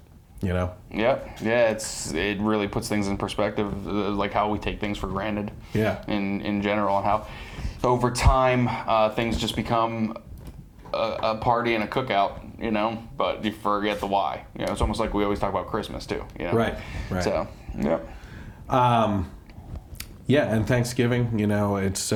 You know? Yeah. It really puts things in perspective, like how we take things for granted. Yeah. In general, and how over time things just become a party and a cookout, you know, but you forget the why. You know, it's almost like we always talk about Christmas too. You know? Right. So, yeah. Yeah, and Thanksgiving, you know, it's you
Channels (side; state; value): both; identical; correlation 1.00